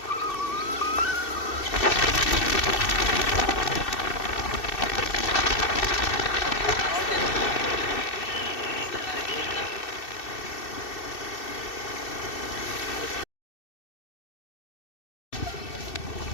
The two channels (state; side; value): late; right; 2.6 ms